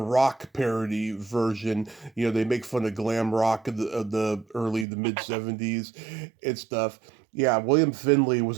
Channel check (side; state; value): left; drops out; at 4.9 s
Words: parody version. They make fun of glam rock of the early the mid '70s and stuff. Yeah, William Finley